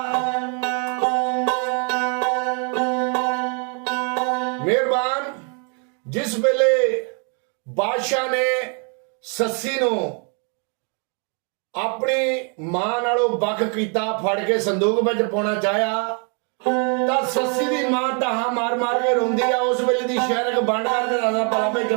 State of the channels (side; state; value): left; quieter; 39.4 dB